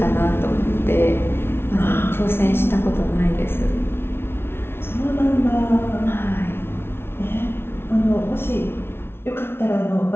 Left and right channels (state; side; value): late; right; 0.12 ms